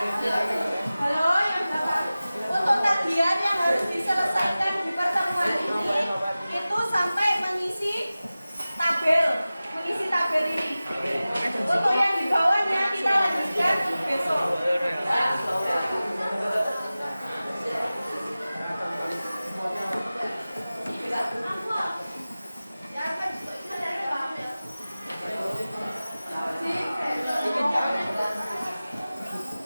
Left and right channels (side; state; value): both; inverted; correlation -0.97